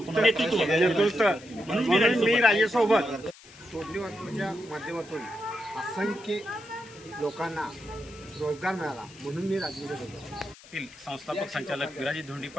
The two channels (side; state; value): left; noise; hiss, 21 dB below the sound